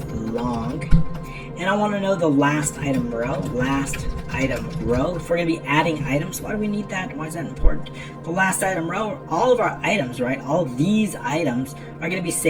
long. And I want to know the last item row, If we're going to be adding items, why do we need that? Why is that important? The last item row, all of our items, right? All these items are going to be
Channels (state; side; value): identical; both; correlation 1.00